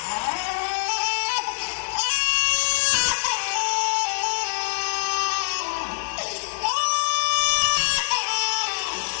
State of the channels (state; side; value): silent; right; digital silence